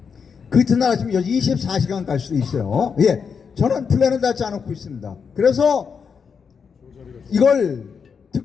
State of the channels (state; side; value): quieter; right; 6.2 dB